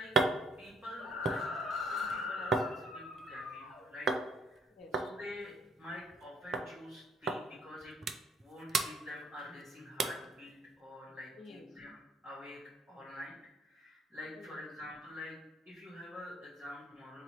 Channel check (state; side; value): normal; both; correlation 0.64